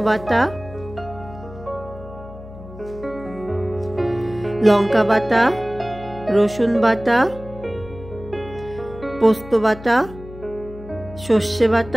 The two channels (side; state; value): left; noise; hum, 16 dB below the sound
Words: বাটা, লঙ্কা বাটা, রসুন বাটা, পোস্ত বাটা, সর্ষে